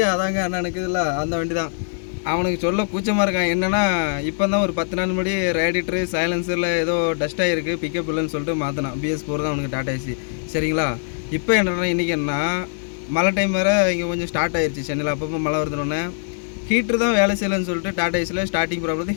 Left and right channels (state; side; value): silent; right; digital silence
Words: அதாங்க அண்ணனுக்கு இல்லை அந்த வண்டி தான். அவனுக்கு சொல்ல கூச்சமாக இருக்கான். என்னென்னா இப்போ தான் ஒரு 10 நாள் முன்னாடி ரேடிட்டரு சைலன்சரில் ஏதோ டஸ்ட் ஆகிருக்கு, பிக்கப் இல்லைன்னு சொல்லிட்டு மாற்றினான். BS4 தான் அவனுக்கு டாடா ஏசி. சரிங்களா? இப்போ என்னென்னா இன்றைக்கி என்ன மழை டைம் வேறு இங்கே கொஞ்சம் ஸ்டார்ட் ஆயிடுச்சு சென்னையில். அப்பப்போ மழை வருதுன்னொன்னே ஹீட்ரு தான் வேலை செய்யலைன்னு சொல்லிட்டு டாடா ஏசியில் ஸ்டார்டிங் ப்ராப்ளத்தை